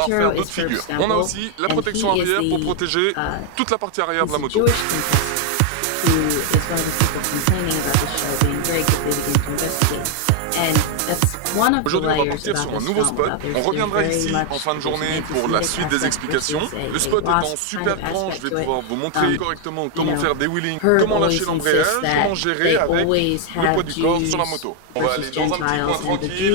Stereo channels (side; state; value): both; different; correlation 0.00